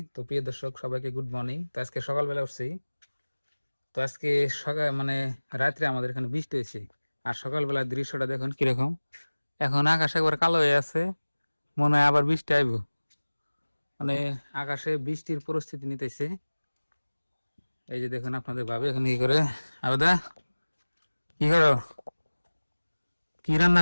তো প্রিয় দর্শক সবাইকে গুড মর্নিং। তো আজকে সকালবেলা উঠছি। তো আজকে সকাল রাত্রে আমাদের এখানে বৃষ্টি হয়েছে। আর সকালবেলার দৃশ্যটা দেখুন কিরকম। এখন আকাশ একবার কালো হয়ে আছে, মনে হয় আবার বৃষ্টি আইব। মানে আকাশে বৃষ্টির পরিস্থিতি নিতেছে। এই যে দেখুন আপনাদের ভাবে এখন কি করে। আবেদা কি করো, কি রান্না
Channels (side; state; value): both; inverted; correlation -1.00